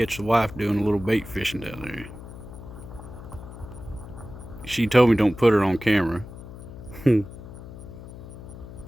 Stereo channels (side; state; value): left; noise; hum, 14 dB below the sound